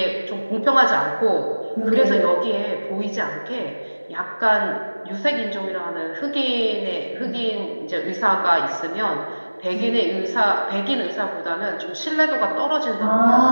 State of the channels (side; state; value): both; inverted; correlation -1.00